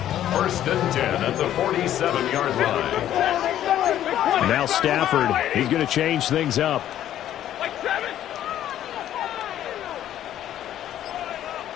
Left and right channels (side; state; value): right; quieter; 11.7 dB